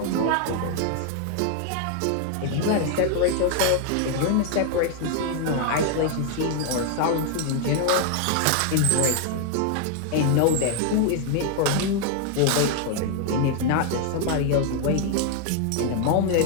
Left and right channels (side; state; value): both; different; correlation 0.00